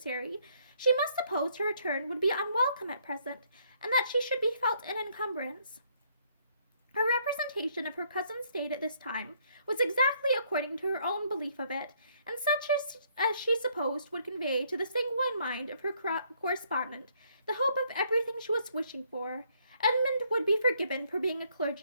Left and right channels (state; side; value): inverted; both; correlation -0.68